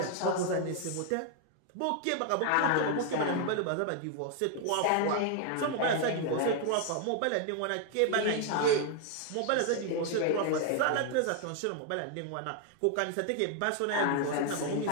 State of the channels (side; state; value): both; different; correlation 0.00